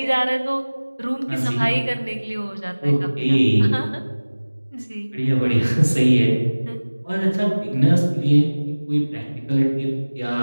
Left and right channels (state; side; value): inverted; both; correlation -1.00